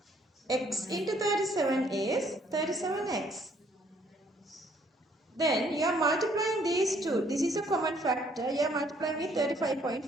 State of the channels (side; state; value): both; normal; correlation 0.64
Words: X into 37 is 37x. Then you are multiplying these two. This is a common factor. You are multiplying with